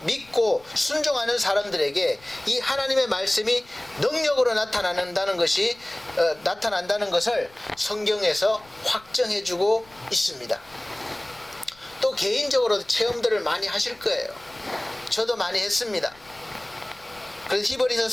믿고 순종하는 사람들에게 이 하나님의 말씀이 능력으로 나타난다는 것을 성경에서 확정해주고 있습니다. 또 개인적으로도 체험들을 많이 하실 거예요. 저도 많이 했습니다. 그래서 히브리서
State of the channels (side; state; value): left; noise; rumble, 27 dB below the sound